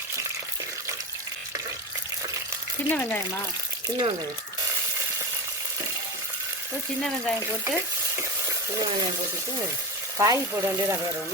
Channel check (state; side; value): normal; both; correlation 0.23